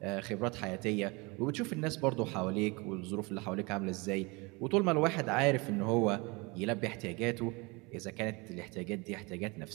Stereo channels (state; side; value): quieter; left; 27.1 dB